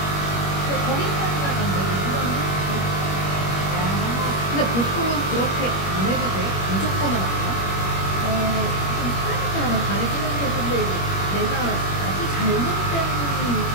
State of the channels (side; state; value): right; late; 21 ms